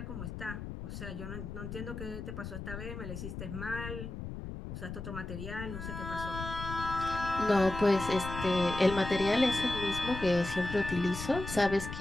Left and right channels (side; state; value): left; noise; rumble, 8 dB below the sound